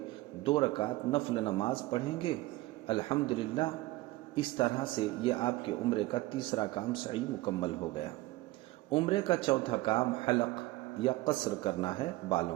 2 رکعت نفل نماز پڑھیں گے۔ الحمدللہ اس طرح سے یہ آپ کے عمرے کا تیسرا کام سعی مکمل ہو گیا۔ عمرے کا چوتھا کام حلق یا قصر کرنا ہے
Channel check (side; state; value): left; quieter; 19.0 dB